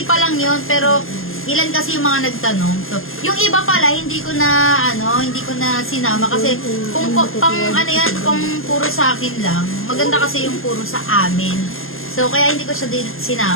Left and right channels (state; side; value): late; right; 0.60 ms